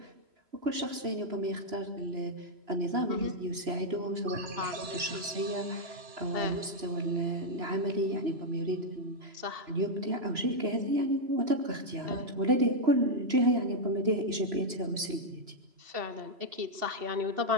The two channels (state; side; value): late; left; 3.0 ms